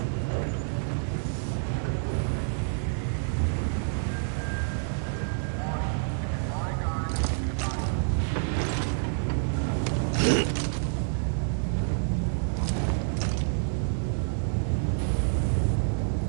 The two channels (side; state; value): left; silent; digital silence